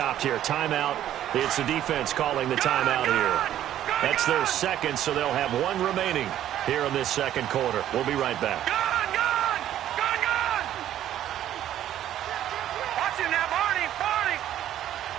here. Timeout. It's the defense calling the timeout here. That's their second, so they'll have one remaining here in this second quarter. We'll be right back. Watch it now, Barney.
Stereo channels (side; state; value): left; quieter; 11.8 dB